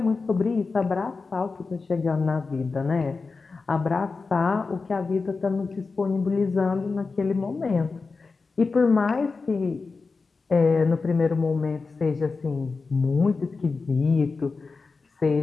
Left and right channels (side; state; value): right; quieter; 4.3 dB